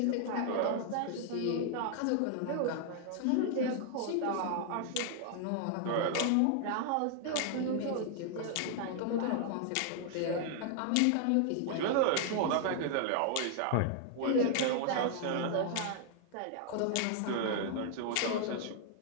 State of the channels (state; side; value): different; both; correlation 0.00